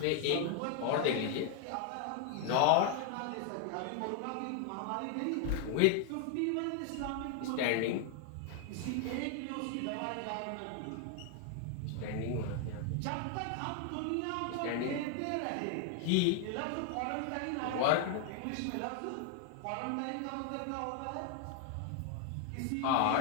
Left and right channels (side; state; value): both; different; correlation 0.00